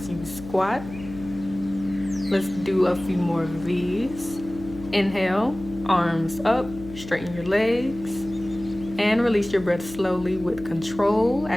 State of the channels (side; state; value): left; noise; hum, 14 dB below the sound